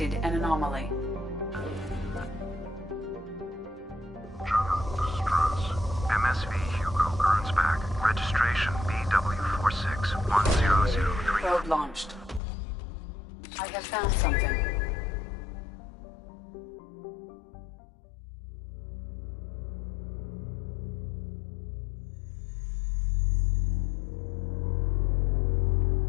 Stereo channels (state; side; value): drops out; right; at 12.4 s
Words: an anomaly. MSV Hugo Gernsback. Registration BW461003. Probe launched. I have found something.